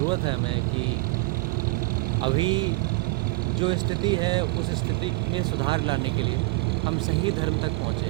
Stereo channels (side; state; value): left; quieter; 24.5 dB